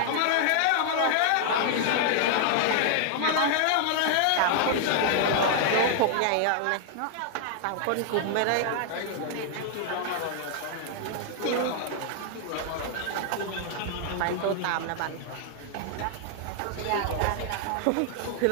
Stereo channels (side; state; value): both; different; correlation 0.00